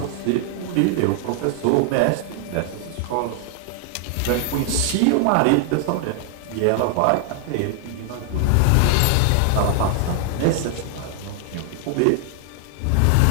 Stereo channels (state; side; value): different; both; correlation 0.00